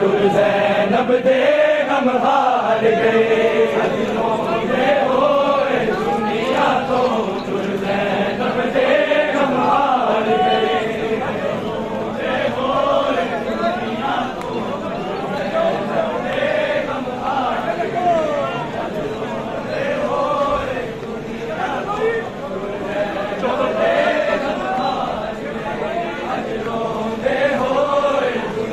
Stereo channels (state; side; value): identical; both; correlation 1.00